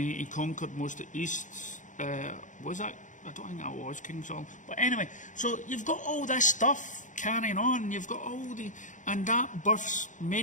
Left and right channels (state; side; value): late; right; 0.36 ms